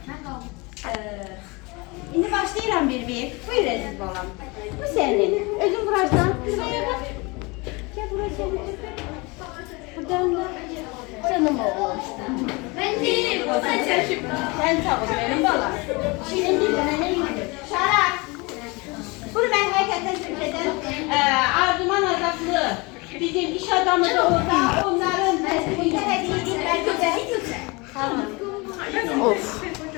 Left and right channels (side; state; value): right; quieter; 26.5 dB